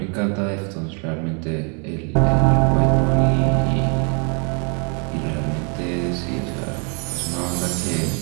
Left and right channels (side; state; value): left; quieter; 36.9 dB